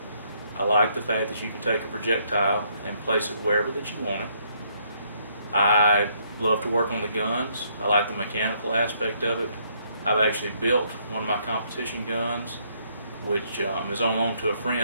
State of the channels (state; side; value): inverted; both; correlation -0.70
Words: I like the fact that you can take a projectile and place it wherever that you want it. I love to work on the guns. I like the mechanical aspect of it. I've actually built one of my competition guns, which is on loan to a